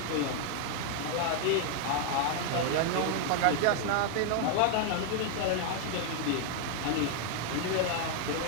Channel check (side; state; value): both; different; correlation 0.00